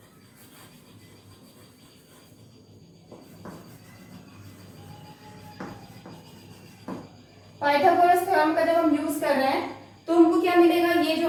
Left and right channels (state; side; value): identical; both; correlation 1.00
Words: Pythagoras theorem का जब हम यूज कर रहे हैं तो हमको क्या मिलेगा, ये जो